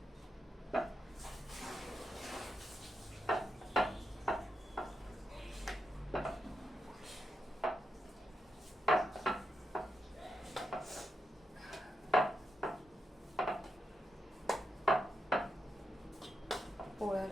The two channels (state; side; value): normal; both; correlation 0.85